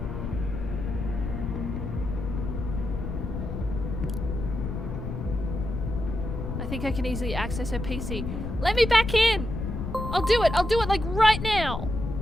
I think I can easily access her PC. Let me back in! I'll do it like right now!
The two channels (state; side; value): noise; left; rumble, 4 dB below the sound